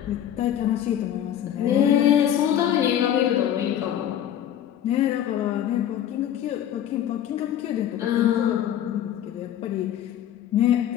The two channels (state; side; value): quieter; right; 10.6 dB